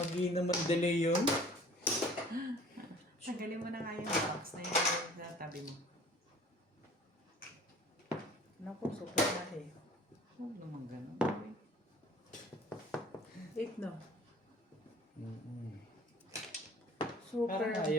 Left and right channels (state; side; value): normal; both; correlation 0.49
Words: naman delay yun. Tanggalin mo na nga yung box na yun sa tabi mo. Naku, super na eh. Huwag naman ganun. 8 no? Super. Parang